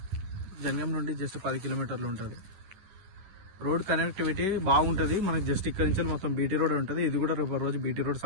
జనగాం నుండి జస్ట్ 10 కిలోమీటర్లు ఉంటుంది. రోడ్ కనెక్టివిటీ బాగుంటుంది మనకి. జస్ట్ ఇక్కడ నుంచి మొత్తం బీటీ రోడ్ ఉంటుంది. ఇది కూడా రేపు రోజు బీటీ రోడ్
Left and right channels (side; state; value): left; late; 10 ms